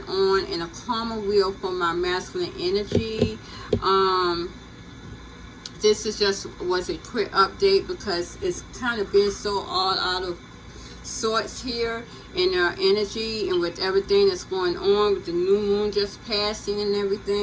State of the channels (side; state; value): both; identical; correlation 1.00